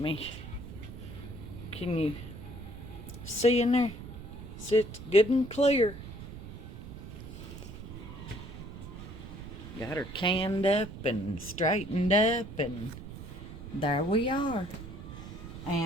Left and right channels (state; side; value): noise; right; rumble, 11 dB below the sound